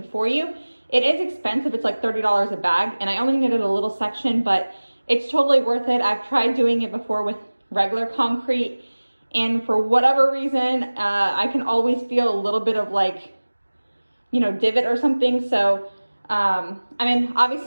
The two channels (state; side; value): inverted; both; correlation -1.00